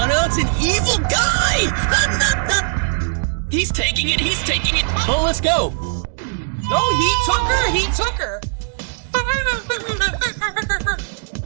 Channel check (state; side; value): silent; left; digital silence